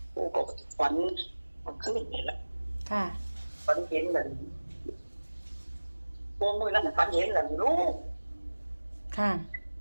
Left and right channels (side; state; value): both; inverted; correlation -1.00